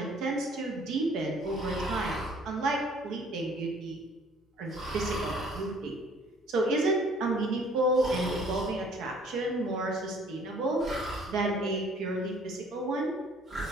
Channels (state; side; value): normal; both; correlation 0.56